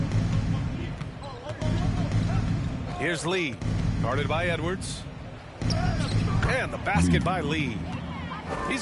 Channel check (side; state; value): both; identical; correlation 1.00